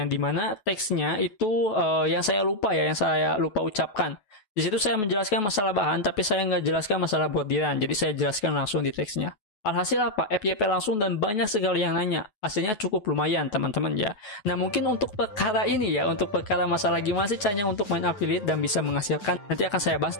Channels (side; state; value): right; late; 9.4 ms